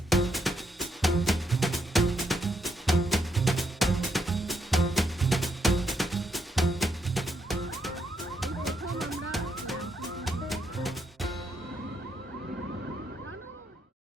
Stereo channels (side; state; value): both; normal; correlation 0.78